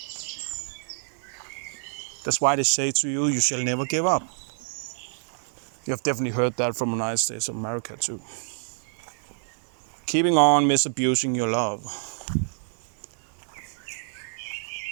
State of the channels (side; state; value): left; silent; digital silence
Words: That's why they say to you, you shall never give up. You have definitely heard that from the United States of America too. Keeping on misabusing your love.